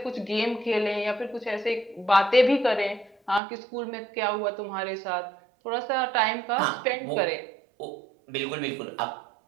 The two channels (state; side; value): drops out; left; at 3.4 s